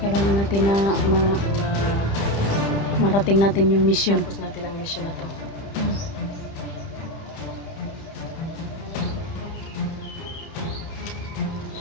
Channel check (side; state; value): right; late; 30 ms